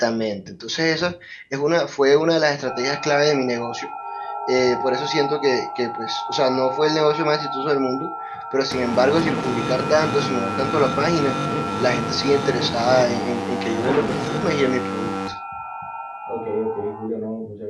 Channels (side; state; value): both; identical; correlation 1.00